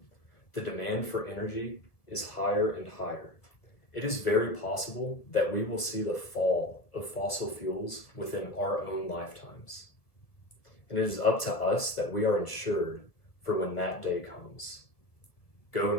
the demand for energy is higher and higher. It is very possible that we will see the fall of fossil fuels within our own lifetimes. And it is up to us that we are ensured for when that day comes. Go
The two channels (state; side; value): late; right; 1.6 ms